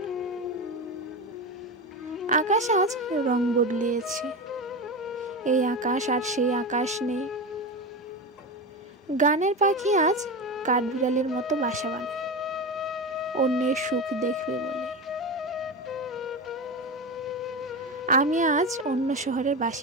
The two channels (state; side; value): normal; both; correlation 0.21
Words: আকাশ আজ রং বদলিয়েছে, এই আকাশ আর সেই আকাশ নেই। গানের পাখি আজ কাঠবিড়ালির মতো বাসা বানায়, অন্যের সুখ দেখবে বলে। আমি আজ অন্য শহরের